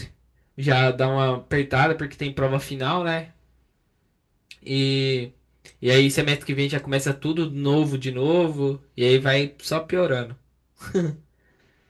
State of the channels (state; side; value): identical; both; correlation 1.00